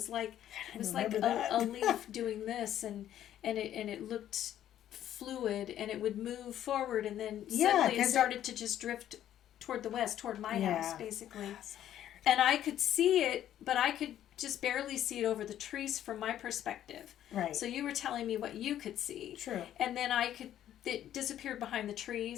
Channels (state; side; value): quieter; right; 11.5 dB